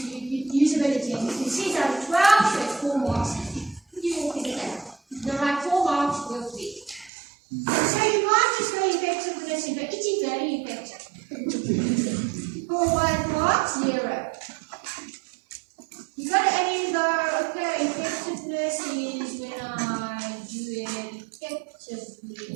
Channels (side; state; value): left; drops out; at 7.1 s